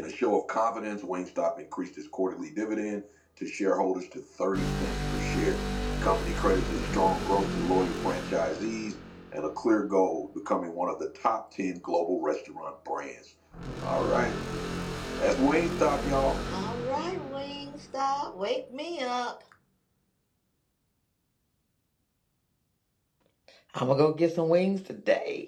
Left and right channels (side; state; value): both; identical; correlation 1.00